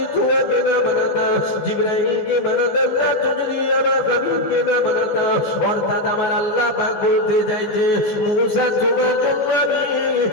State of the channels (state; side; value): late; right; 15 ms